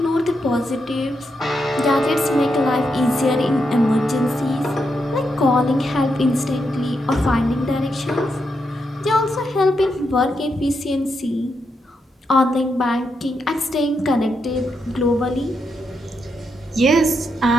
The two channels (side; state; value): both; normal; correlation 0.83